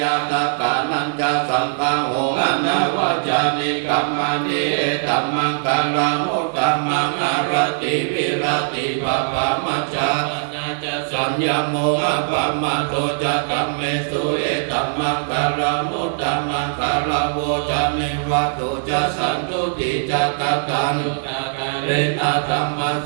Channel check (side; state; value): left; silent; digital silence